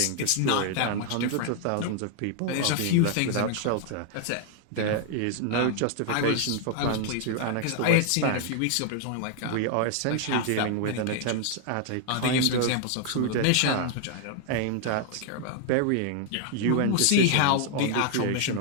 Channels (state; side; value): different; both; correlation 0.00